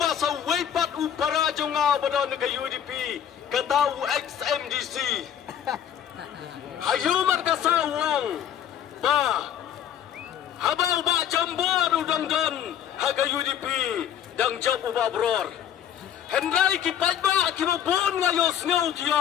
weipat upara jonga badan ke UDP Ketau XMDC Hayu markasa wang Ba Habau ba jambor udang don Haga UDP Dang jab uba bror Hendrai kipat ba kibabon ngayos ngau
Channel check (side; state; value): right; quieter; 9.7 dB